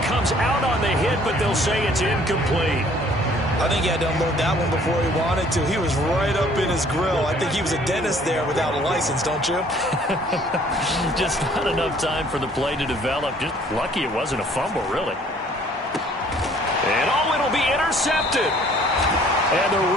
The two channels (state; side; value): normal; both; correlation 0.57